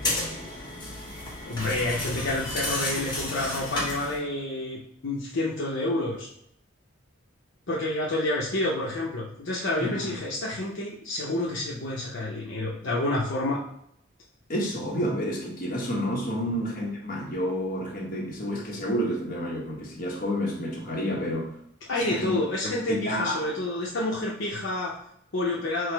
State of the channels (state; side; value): normal; both; correlation 0.29